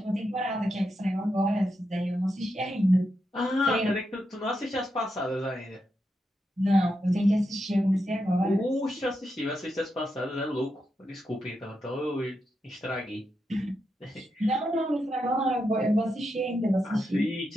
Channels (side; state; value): both; normal; correlation 0.85